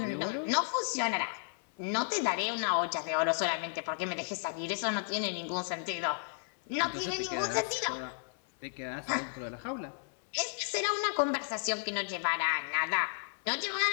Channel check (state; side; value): silent; right; 56 dB below the other